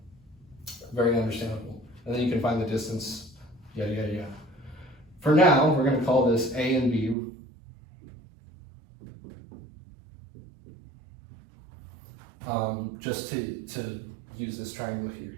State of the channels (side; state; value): left; drops out; at 7.2 s